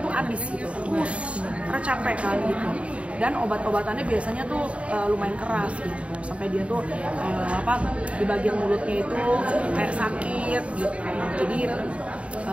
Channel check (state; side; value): late; left; 0.062 ms